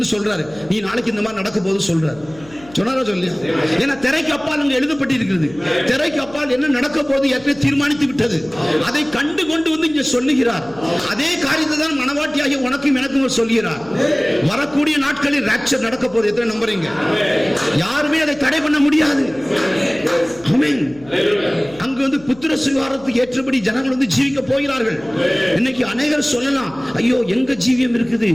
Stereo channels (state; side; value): noise; left; hum, 22 dB below the sound